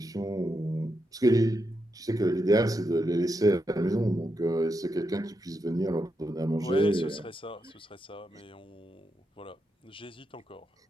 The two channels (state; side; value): normal; both; correlation 0.84